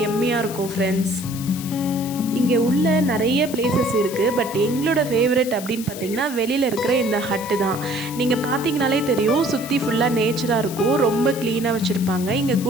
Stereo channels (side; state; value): left; noise; hiss, 12 dB below the sound